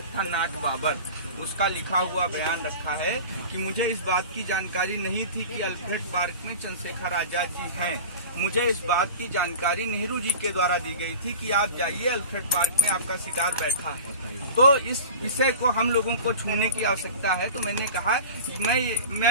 था नाट बाबर, उसका लिखा हुआ बयान रखा है कि मुझे इस बात की जानकारी नहीं थी कि अल्फ्रेड पार्क में चंद्रशेखर आजाद जी हैं। मुझे इस बात की जानकारी नेहरू जी के द्वारा दी गई थी कि आप जाइए, अल्फ्रेड पार्क में आपका शिकार बैठा है। तो इस विषय को हम लोगों को छूने की आवश्यकता है। तो मैंने कहा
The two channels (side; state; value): both; inverted; correlation -0.36